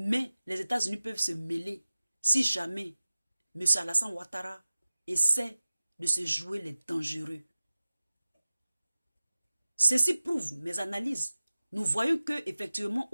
les États-Unis peuvent se mêler si jamais M. Alassane Ouattara essaie de se jouer les dangereux. Ceci prouve mes analyses. Nous voyons que effectivement,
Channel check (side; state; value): both; inverted; correlation -0.96